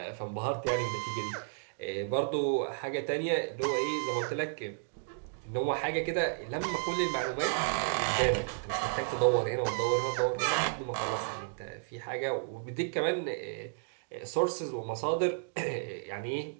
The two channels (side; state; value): left; silent; digital silence